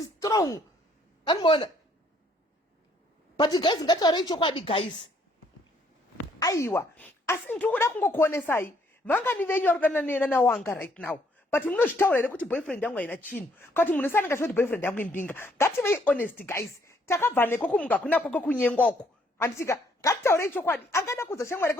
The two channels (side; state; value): both; normal; correlation 0.67